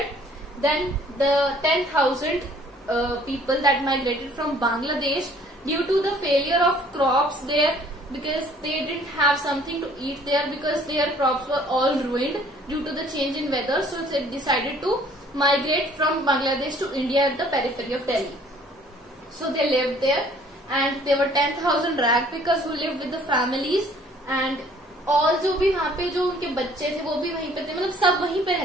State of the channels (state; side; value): normal; both; correlation 0.57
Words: then the 10,000 people that migrated from Bangladesh due to the failure of crops there, because they didn't have something to eat there, because their crops were all ruined due to the change in weather. So they decided to migrate from Bangladesh to India at the periphery of Delhi. So they lived there, and there were 10,000 ragpickers who lived with the families, and all जो भी वहाँ पे जो उनके बच्चे थे वो भी वहीं पे थे, मतलब सब वहीं पे